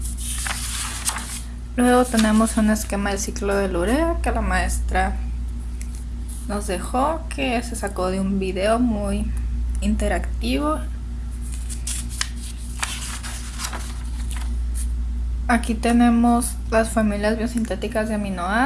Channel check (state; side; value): identical; both; correlation 1.00